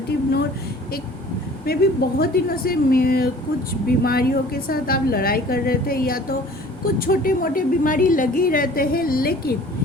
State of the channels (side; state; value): both; normal; correlation 0.48